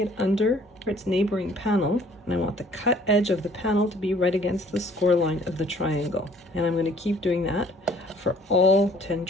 under its neighboring panel. And I want the cut edge of the panel to be right against the score line of the triangle. And I'm going to keep doing that for all 10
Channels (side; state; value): both; normal; correlation 0.57